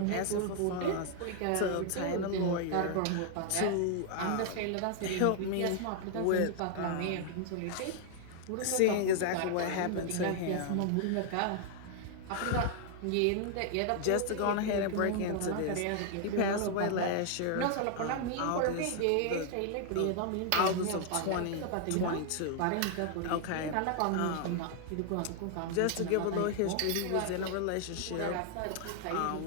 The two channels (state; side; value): different; both; correlation 0.00